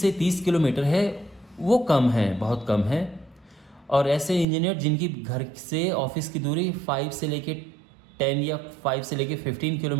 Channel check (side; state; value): left; drops out; at 4.5 s